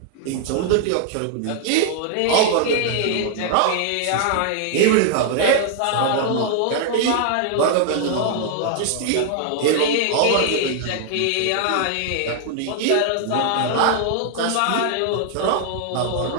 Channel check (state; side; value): different; both; correlation 0.00